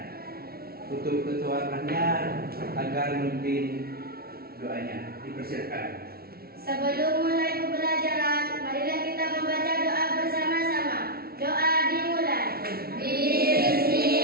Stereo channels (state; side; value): late; left; 0.44 ms